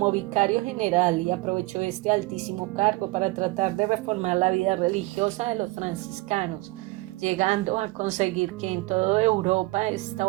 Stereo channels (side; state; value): left; quieter; 22.0 dB